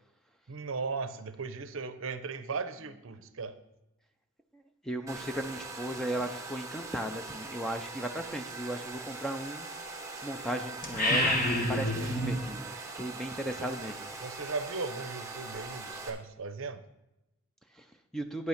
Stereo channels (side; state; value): both; normal; correlation 0.32